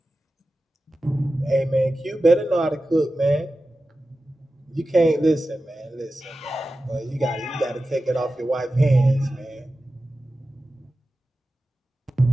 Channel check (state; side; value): normal; both; correlation 0.94